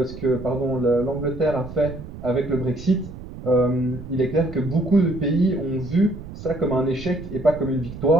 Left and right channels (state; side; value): noise; right; rumble, 12 dB below the sound